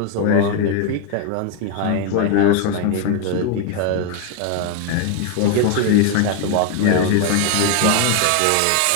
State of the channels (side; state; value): both; different; correlation 0.01